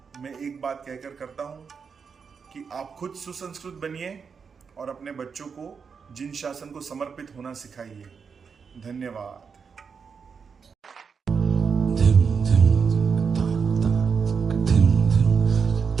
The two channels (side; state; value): left; quieter; 5.9 dB